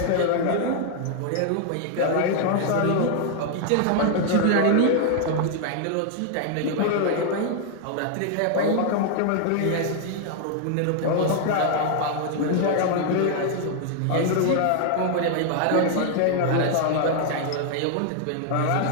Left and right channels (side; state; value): both; different; correlation 0.00